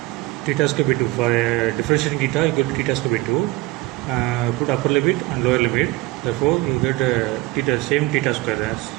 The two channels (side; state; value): left; quieter; 19.5 dB